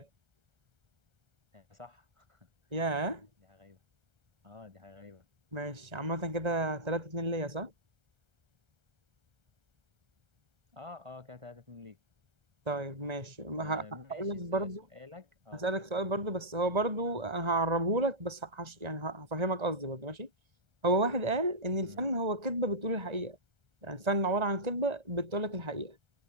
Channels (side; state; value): left; late; 1.3 ms